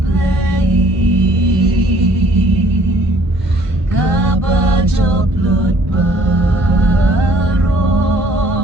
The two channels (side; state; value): both; normal; correlation 0.57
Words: kaba joblot baro